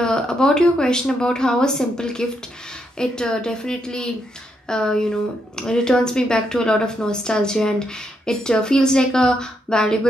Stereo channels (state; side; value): normal; both; correlation 0.79